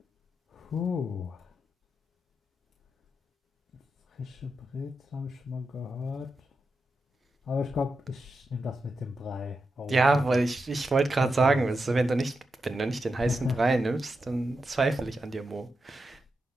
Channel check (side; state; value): both; normal; correlation 0.88